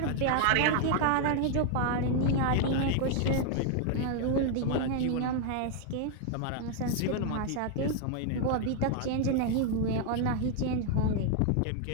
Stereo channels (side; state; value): both; different; correlation 0.00